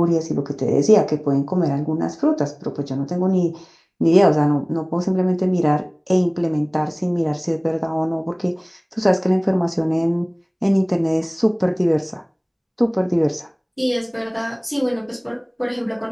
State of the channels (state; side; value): identical; both; correlation 1.00